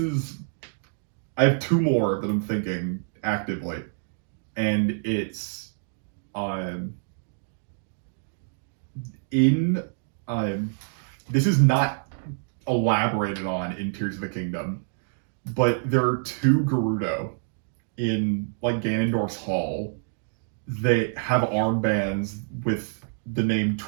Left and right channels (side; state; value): left; silent; digital silence